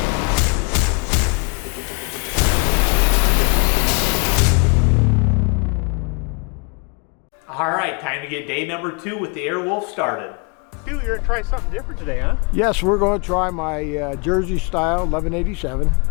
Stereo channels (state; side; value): quieter; right; 32.8 dB